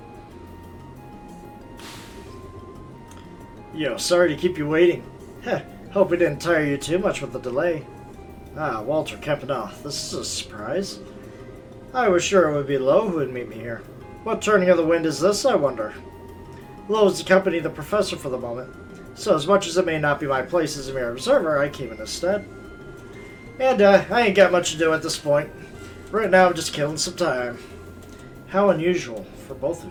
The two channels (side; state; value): both; identical; correlation 1.00